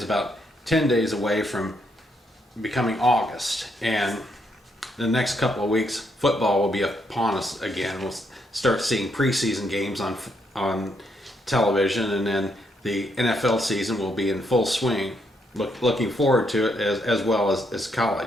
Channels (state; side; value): normal; both; correlation 0.76